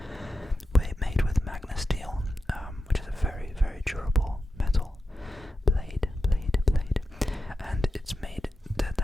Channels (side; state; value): both; normal; correlation 0.90